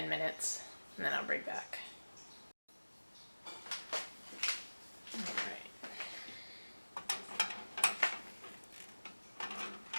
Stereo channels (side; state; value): both; inverted; correlation -1.00